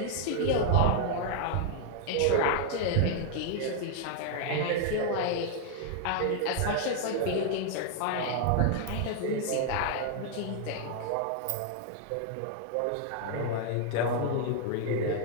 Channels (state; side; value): different; both; correlation 0.00